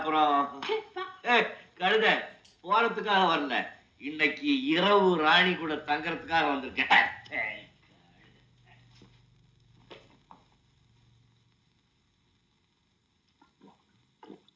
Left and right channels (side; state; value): both; identical; correlation 1.00